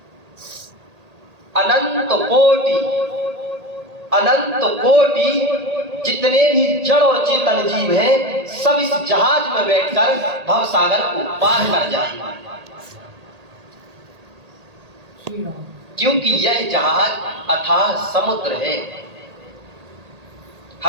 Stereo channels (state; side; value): late; left; 1.8 ms